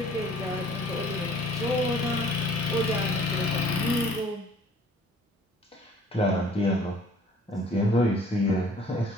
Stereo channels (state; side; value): normal; both; correlation 0.54